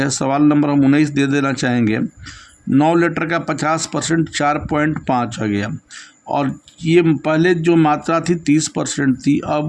सवाल नंबर हम 19 दे देना चाहेंगे। 9 लीटर का 50% 4.5 आ गया, और ये पहले जो मात्रा थी 30% थी,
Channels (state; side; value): identical; both; correlation 1.00